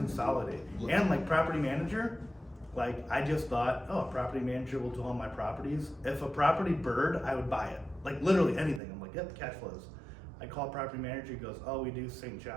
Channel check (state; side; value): drops out; left; at 8.8 s